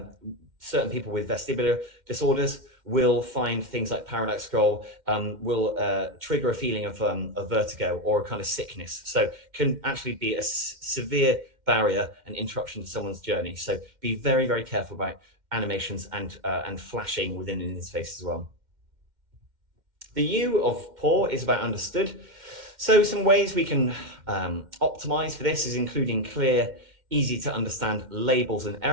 certain people with vestibular disorders will find things like parallax scroll will trigger a feeling of vertigo or a kind of sickness. So can actually be a severe barrier and interruption to someone's journey. So be very, very careful about animations and flashing within an interface as well. The U of poor is about understood. So some ways we can optimize for this is including clear, easy to understand labels and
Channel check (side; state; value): left; late; 2.1 ms